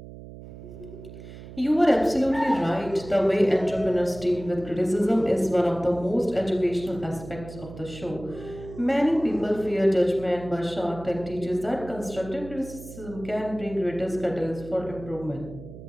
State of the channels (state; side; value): noise; right; hum, 15 dB below the sound